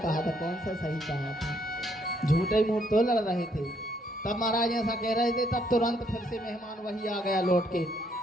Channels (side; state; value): both; normal; correlation 0.70